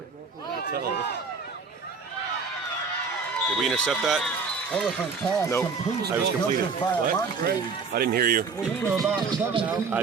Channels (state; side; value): quieter; left; 5.0 dB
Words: Did we intercept that? Nope. I was completed. I didn't hear you. I